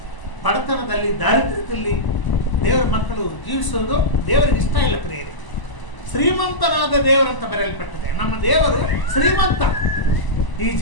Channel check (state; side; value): late; right; 1.0 ms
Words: ಬಡತನದಲ್ಲಿ, ದಾರಿದ್ರ್ಯದಲ್ಲಿ ದೇವರ ಮಕ್ಕಳು ಜೀವಿಸುವುದು ದೇವರಿಗೆ ಇಷ್ಟ ಇಲ್ಲ ಪ್ರಿಯರೇ. ಶ್ರೀಮಂತನಾದ ದೇವರಂತ ಬರೆಯಲ್ಪಟ್ಟಿದೆ. ನಮ್ಮ ದೇವರು ಶ್ರೀಮಂತ. ಈ